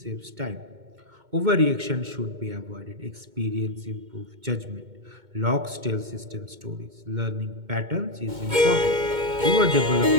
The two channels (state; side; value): late; left; 2.2 ms